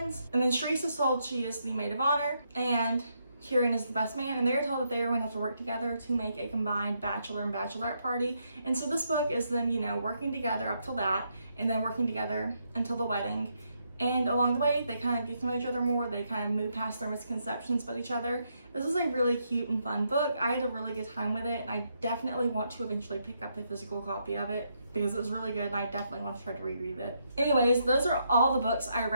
And then Sharice is told she is the maid of honor and Kieran is the best man, and they're told that they are going to have to work together to make a combined bachelor and bachelorette party. And so this book is them, working together up till that, and then working together until the wedding. And along the way, they kind of get to know each other more. They kind of move past their misconceptions about each other. This is a really cute and fun book. I had a really good time with it, and I definitely want to eventually pick up a physical copy of it because it was really good, and I definitely want to try to reread it. Anyways, those are all the books I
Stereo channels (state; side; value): inverted; both; correlation -0.78